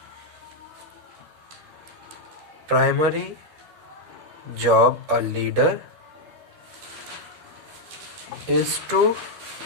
Primary job a leader is to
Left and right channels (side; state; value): left; late; 13 ms